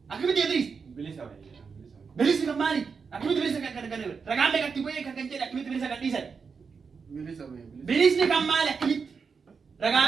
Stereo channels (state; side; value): quieter; left; 5.5 dB